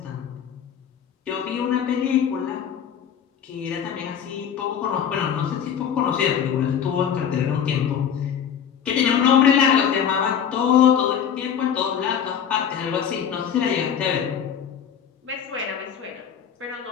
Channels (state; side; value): quieter; right; 8.3 dB